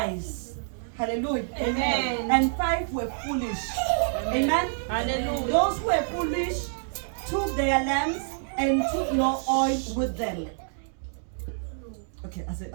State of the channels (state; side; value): silent; left; digital silence